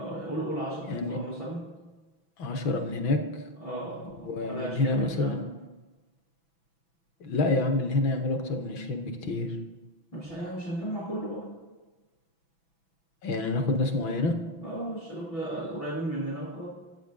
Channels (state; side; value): late; right; 6.0 ms